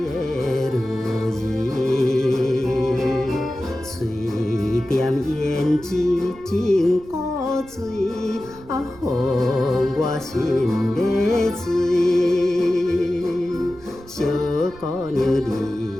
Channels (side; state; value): right; noise; rumble, 21 dB below the sound